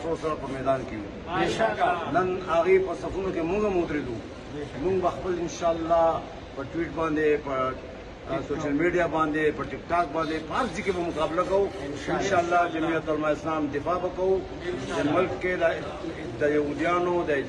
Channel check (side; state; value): both; identical; correlation 1.00